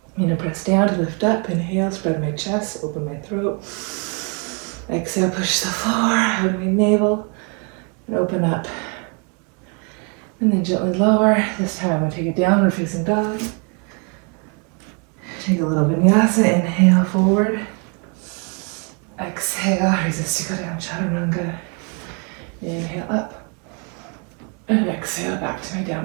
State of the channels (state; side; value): quieter; left; 36.0 dB